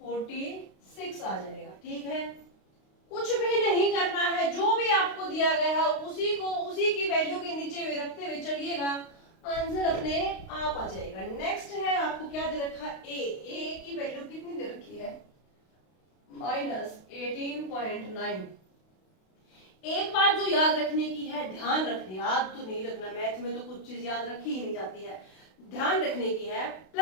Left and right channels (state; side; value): late; right; 32 ms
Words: 46 आ जाएगा। ठीक है, कुछ भी नहीं करना है, जो भी आपको दिया गया है उसी को उसी की वैल्यू के नीचे में रखते हुए चलिएगा, आंसर अपने आप आ जाएगा। नेक्स्ट है, आपको क्या दे रखा है, ए की वैल्यू कितनी दे रखी है, -18.9। एक बात जो याद रखने की है, ध्यान रखने, याद तो नहीं रखना, मैथ में तो कुछ चीज याद रखी ही नहीं जाती है, ध्यान रखने की है,